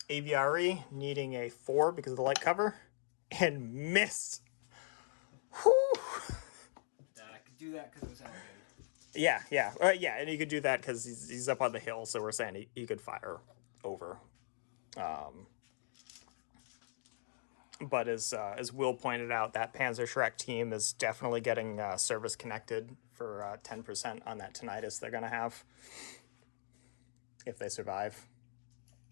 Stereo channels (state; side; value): silent; right; digital silence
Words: AVRE, needing a 4 because of the light cover, and missed. Whew. I could do that because it was elevated. Yeah, and he could do that because he's up on the hill, so we're saying he could fire over. But as Will pointed out, that Panzer Shrek team is definitely getting service connected for 10% on that tinnitus they're going to have if they survive.